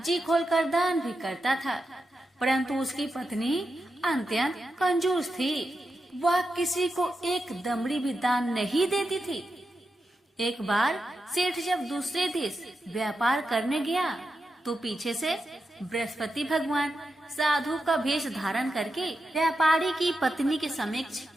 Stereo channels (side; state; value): both; normal; correlation 0.88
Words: खोलकर दान भी करता था। परंतु उसकी पत्नी अत्यंत कंजूस थी। वह किसी को एक दमड़ी भी दान नहीं देती थी। एक बार सेठ जब दूसरे देश व्यापार करने गया तो पीछे से बृहस्पति भगवान साधु का वेश धारण करके व्यापारी की पत्नी के समक्ष